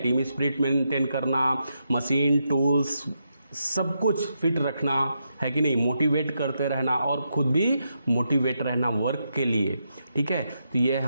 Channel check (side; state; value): both; inverted; correlation -0.83